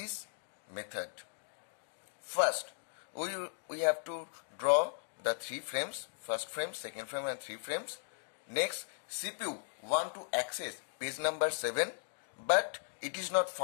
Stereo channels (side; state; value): right; silent; digital silence